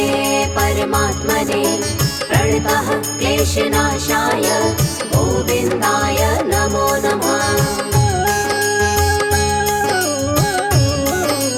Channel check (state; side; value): identical; both; correlation 1.00